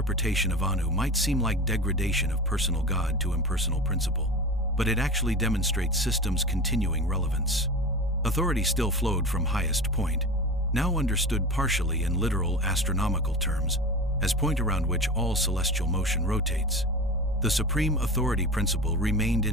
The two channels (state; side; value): normal; both; correlation 0.30